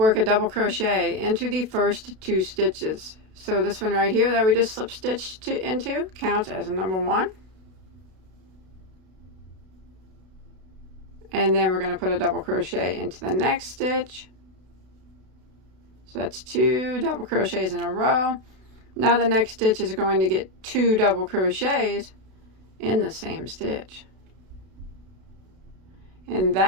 a double crochet into the first 2 stitches. So this one right here that we just slip stitched into counts as a number 1. And then we're going to put a double crochet into the next stitch. So that's 2 double crochets in a row. Now the next stitch is going to get 2 double crochets in the same stitch. And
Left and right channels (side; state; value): left; late; 32 ms